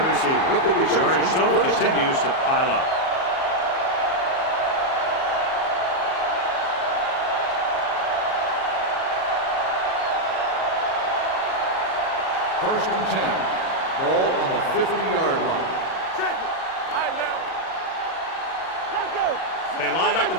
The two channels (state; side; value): late; right; 37 ms